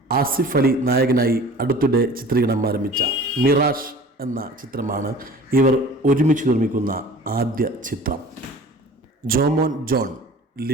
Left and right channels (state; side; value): normal; both; correlation 0.44